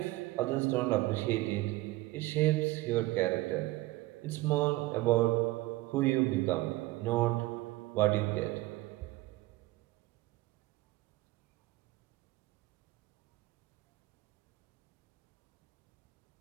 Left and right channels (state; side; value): quieter; left; 18.9 dB